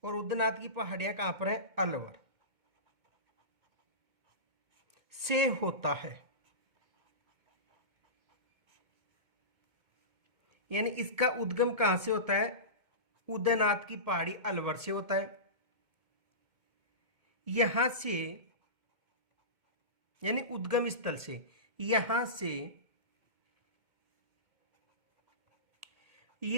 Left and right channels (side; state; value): left; late; 2.2 ms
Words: और उदयनाथ की पहाड़ियां कहां पर है? अलवर से होता है। यानी इसका उद्गम कहां से होता है? उदयनाथ की पहाड़ी अलवर से होता है। यहां से, यानी उद्गम स्थल से, यहां से